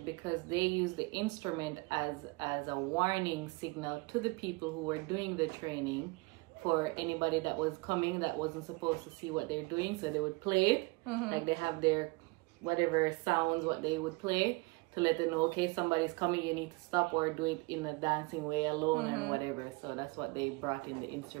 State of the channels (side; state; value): left; quieter; 26.0 dB